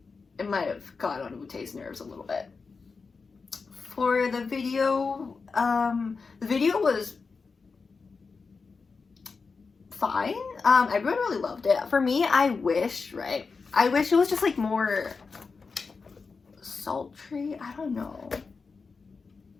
it might have got on Woo-tae's nerves a little bit. For the video was fine. Everyone really loved it. For me, I wish it was just like more sultry. I don't know,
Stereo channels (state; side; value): quieter; right; 4.7 dB